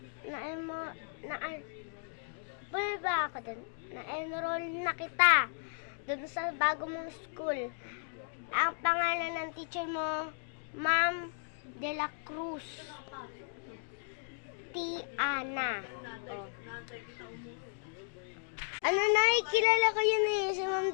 Ba ako dun? Na-enroll na kita. Doon sa bago mong school. Ang pangalan ng teacher mo, Ma'am De La Cruz. Tiana. Oh. Ano na, kilala ko yun eh. Si Ma'am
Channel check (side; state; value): right; silent; digital silence